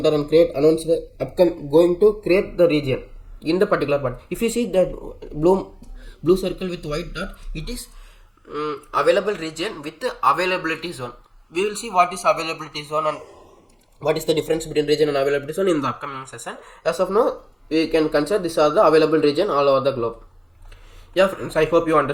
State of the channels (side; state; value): both; identical; correlation 1.00